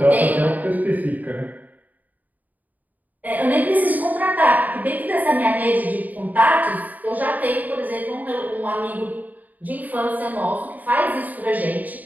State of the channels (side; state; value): left; late; 0.080 ms